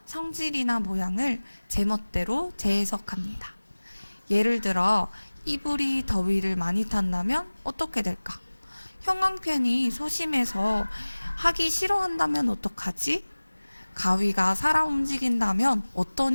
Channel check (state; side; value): inverted; both; correlation -1.00